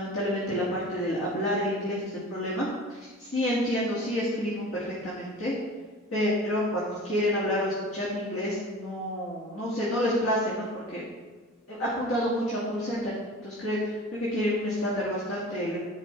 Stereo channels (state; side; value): normal; both; correlation 0.39